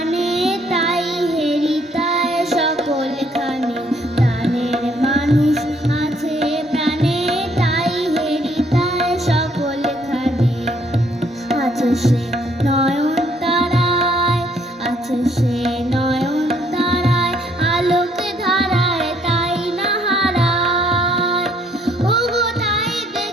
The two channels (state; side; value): normal; both; correlation 0.66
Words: তাই হেরিতায় সকলখানে। প্রাণের মানুষ আছে প্রাণে, তাই হেরিতায় সকলখানে। আছে সে নয়নতারায়, আছে সে নয়নতারায়, আলোকে ধারায় তাই না হারায়। ওগো তাই